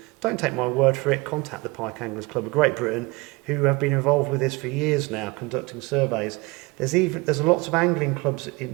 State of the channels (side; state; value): left; quieter; 24.6 dB